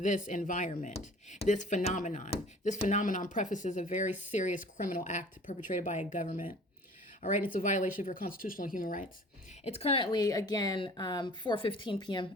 this environment, this phenomenon. This phenomenon prefaces a very serious criminal act perpetrated by a government. All right, it's a violation of your constitutional human rights. It's currently, again, 4:15 p.m.,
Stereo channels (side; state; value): both; normal; correlation 0.48